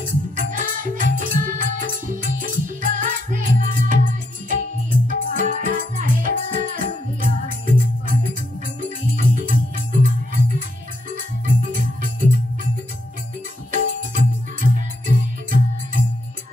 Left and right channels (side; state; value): both; normal; correlation 0.78